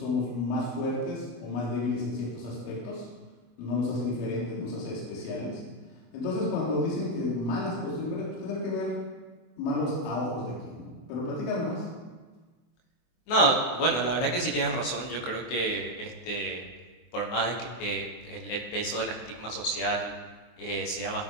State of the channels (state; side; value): late; right; 23 ms